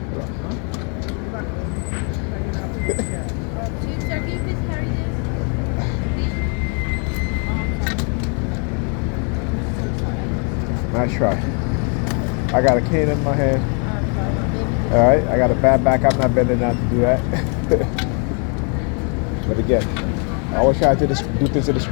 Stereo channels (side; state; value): right; quieter; 38.6 dB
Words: Nice try. I got a cane in my hand. All right, I got a bad back. I'm not bending down to do that. But again, I always try to do things to